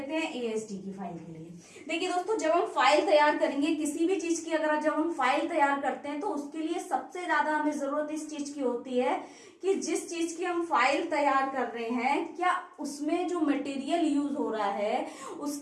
हैं एएसडी की फाइल के लिए। देखिए दोस्तों, जब हम फाइल तैयार करेंगे किसी भी चीज की, अगर जब हम फाइल तैयार करते हैं तो उसके लिए सबसे ज्यादा हमें जरूरत इस चीज की होती है कि जिस चीज की हम फाइल तैयार कर रहे हैं, क्या उसमें जो मटेरियल यूज हो रहा है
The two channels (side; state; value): both; identical; correlation 1.00